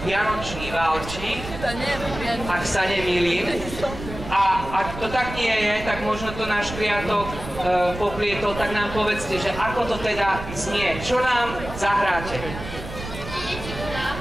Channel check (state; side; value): noise; right; rumble, 10 dB below the sound